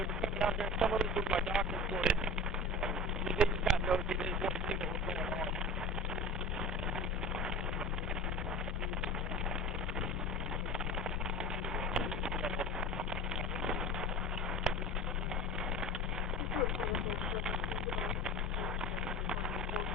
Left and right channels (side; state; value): both; normal; correlation 0.34